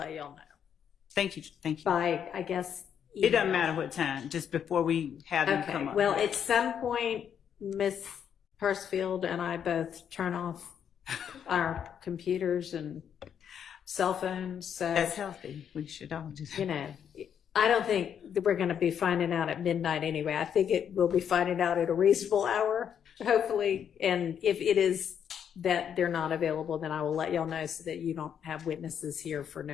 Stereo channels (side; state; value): right; quieter; 8.4 dB